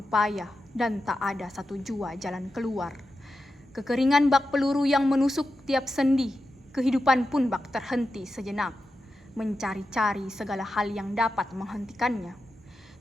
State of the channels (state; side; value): normal; both; correlation 0.90